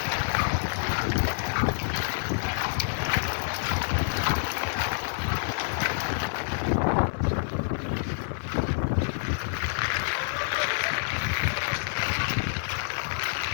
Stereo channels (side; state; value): right; silent; 60 dB below the other